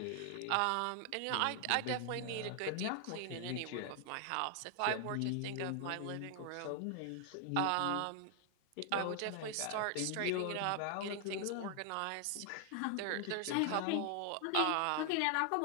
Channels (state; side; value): different; both; correlation 0.00